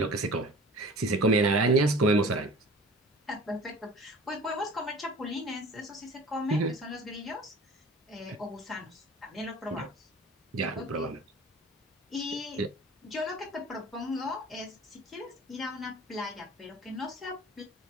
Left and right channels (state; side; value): normal; both; correlation 0.43